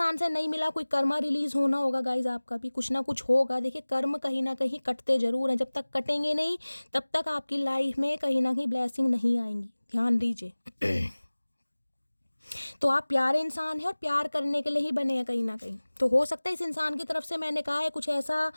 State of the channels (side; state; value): both; inverted; correlation -1.00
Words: से नहीं मिला, कोई कर्मा रिलीज होना होगा गाइज, आपका भी कुछ ना कुछ होगा। देखिए कर्म कहीं ना कहीं कटते जरूर हैं, जब तक कटेंगे नहीं तब तक आपकी लाइफ में कहीं ना कहीं ब्लेसिंग नहीं आएंगी, ध्यान दीजिए। तो आप प्यारे इंसान हैं और प्यार करने के लिए ही बने हैं कहीं ना कहीं। तो हो सकता है इस इंसान की तरफ से, मैंने कहा है, कुछ ऐसा